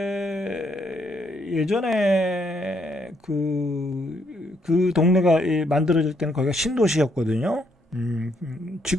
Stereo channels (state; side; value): normal; both; correlation 0.73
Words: 예전에 그 동네가 만들어질 때는 거기가 신도시였거든요.